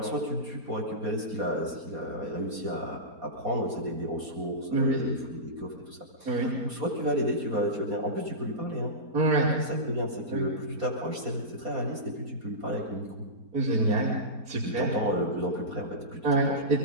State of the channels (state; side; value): late; left; 4.3 ms